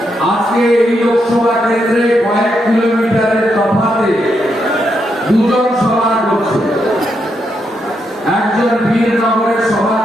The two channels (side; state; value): both; normal; correlation 0.81